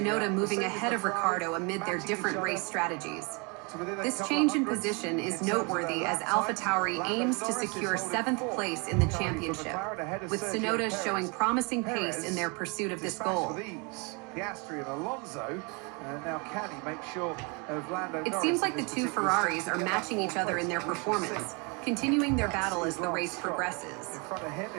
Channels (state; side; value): quieter; left; 31.6 dB